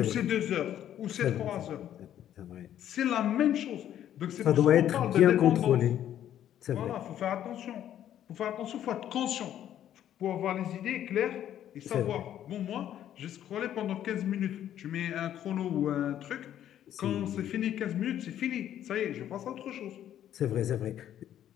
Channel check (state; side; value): quieter; right; 11.0 dB